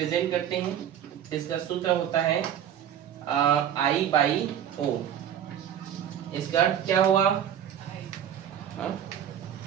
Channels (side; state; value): left; quieter; 9.8 dB